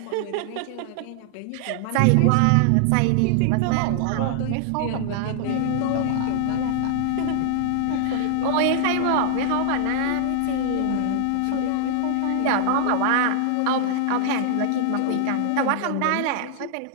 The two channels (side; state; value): both; different; correlation 0.00